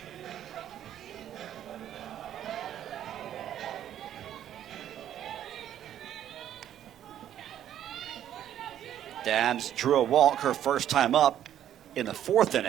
Dabbs drew a walk her first time up in the 4th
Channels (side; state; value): left; quieter; 10.9 dB